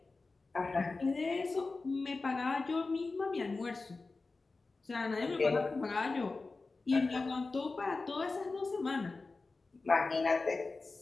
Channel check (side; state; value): right; quieter; 3.7 dB